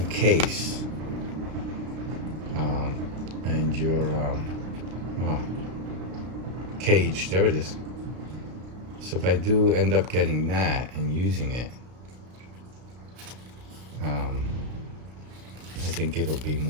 case. And your cage, there it is. So if I do end up getting that and using it, I think it'll be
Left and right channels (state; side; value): late; left; 33 ms